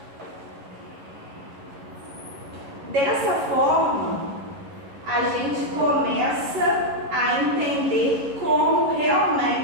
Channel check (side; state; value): left; late; 11 ms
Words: Dessa forma, a gente começa a entender como